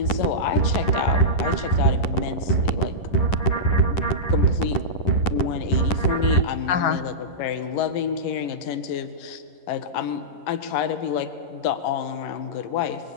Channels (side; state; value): right; late; 11 ms